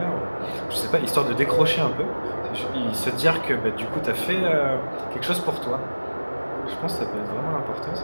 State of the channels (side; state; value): both; inverted; correlation -1.00